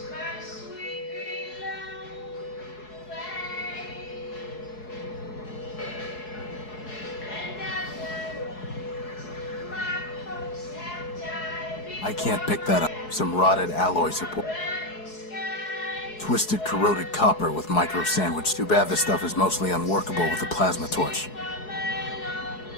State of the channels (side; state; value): right; late; 4.7 ms